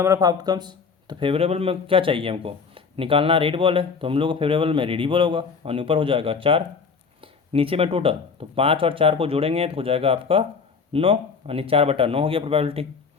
ऑफ आउटकम्स। तो फेवरेबल में क्या चाहिए हमको निकालना, रेड बॉल है तो हम लोग को फेवरेबल में रेड ही बॉल होगा, और ऊपर हो जाएगा 4, नीचे में टोटल तो 5 और 4 को जोड़ेंगे तो हो जाएगा आपका 9, यानी 4/9 हो गया प्रोबेबिलिटी।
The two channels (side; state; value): right; quieter; 5.4 dB